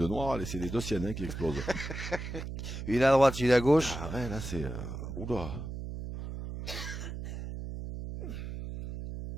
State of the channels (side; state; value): right; noise; hum, 7 dB below the sound